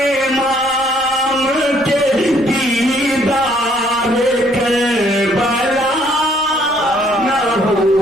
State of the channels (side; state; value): right; noise; rumble, 26 dB below the sound